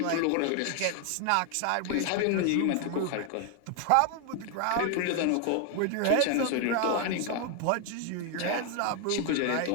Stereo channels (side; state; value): both; different; correlation 0.01